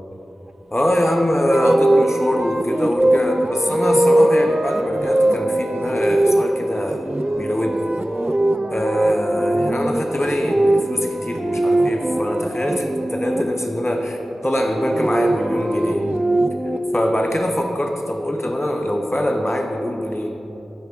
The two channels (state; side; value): normal; both; correlation 0.95